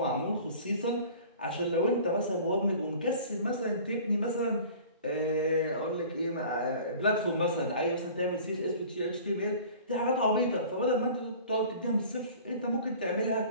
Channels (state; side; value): inverted; both; correlation -0.45